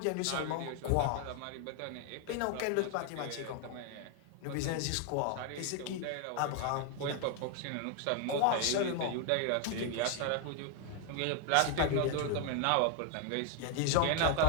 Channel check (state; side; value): different; both; correlation 0.01